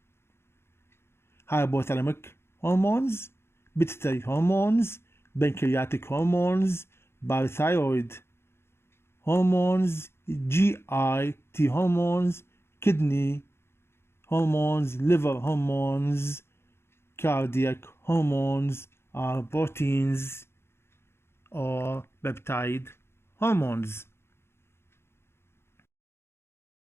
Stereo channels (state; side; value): late; right; 0.12 ms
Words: Hypothalamic hormones, pituitary hormones, pancreatic hormones, parathyroid hormones, GIT hormones, kidney hormones, liver hormones, cardiac hormones are proteins or peptide hormones.